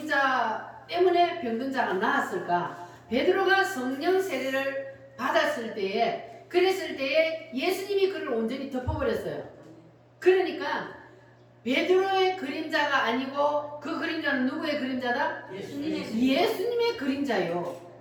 때문에 병든 자가 나았을까? 베드로가 성령 세례를 받았을 때에, 그랬을 때에 예수님이 그를 온전히 덮어버렸어요. 그러니까 베드로의 그림자가 아니고 그 그림자는 누구의 그림자다? 예수님의 그림자요.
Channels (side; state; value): both; identical; correlation 1.00